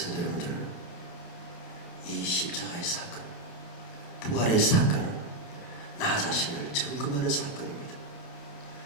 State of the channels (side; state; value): right; late; 28 ms